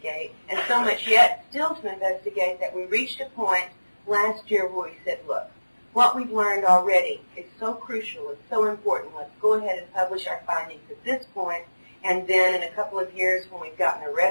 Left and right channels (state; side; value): inverted; both; correlation -1.00